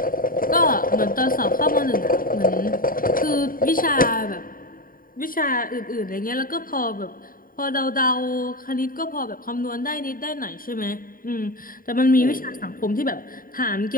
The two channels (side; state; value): right; late; 0.41 ms